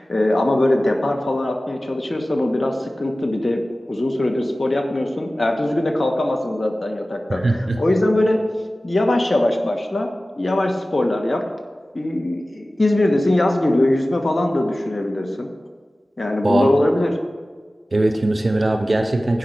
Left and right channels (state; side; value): normal; both; correlation 0.96